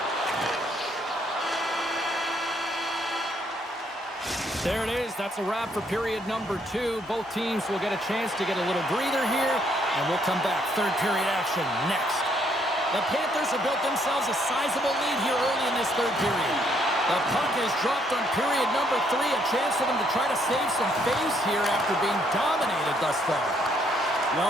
There it is. That's a wrap for period number 2. Both teams will get a chance to get a little breather here, and we'll come back. Third period action next. The Panthers have built themselves a sizable lead here early in this third period. The puck is dropped on period number 3. A chance for them to try to save some face here after being dominated thus far.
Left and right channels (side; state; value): both; normal; correlation 0.70